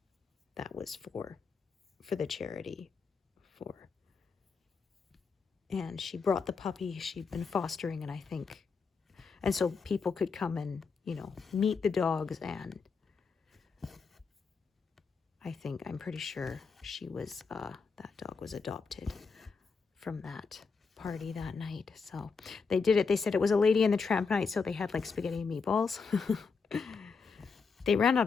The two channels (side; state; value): right; quieter; 5.1 dB